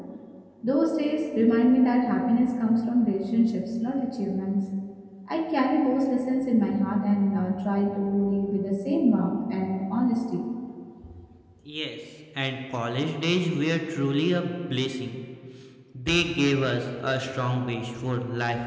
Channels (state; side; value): identical; both; correlation 1.00